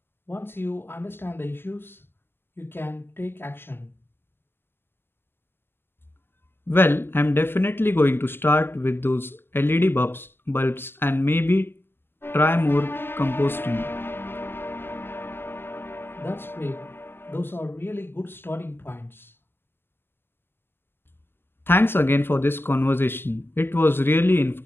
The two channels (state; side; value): late; right; 0.11 ms